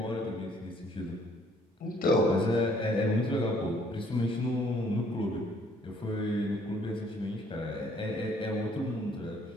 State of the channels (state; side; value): normal; both; correlation 0.62